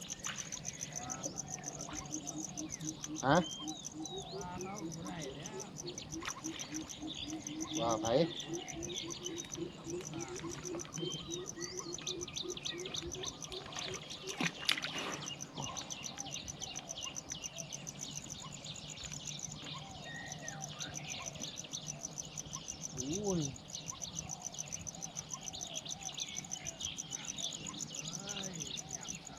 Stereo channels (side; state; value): both; identical; correlation 1.00